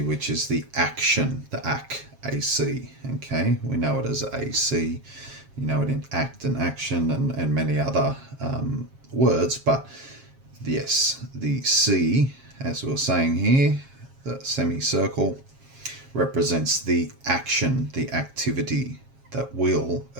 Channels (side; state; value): left; late; 7.4 ms